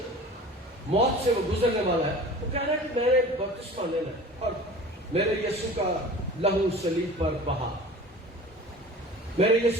موت سے وہ گزرنے والا ہے، وہ کہہ رہا ہے کہ میں نے بپتسمہ لینا ہے اور میرے یسوع کا لہو صلیب پر بہا، میرے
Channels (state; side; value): normal; both; correlation 0.41